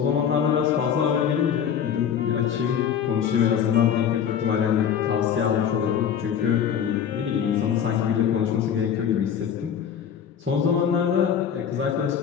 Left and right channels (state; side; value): quieter; right; 8.4 dB